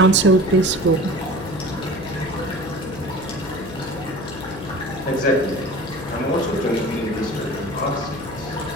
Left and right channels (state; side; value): noise; left; hum, 13 dB below the sound